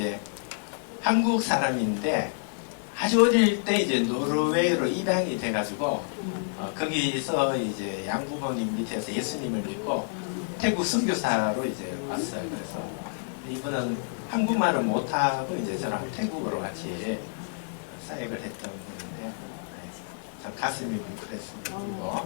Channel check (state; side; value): silent; right; digital silence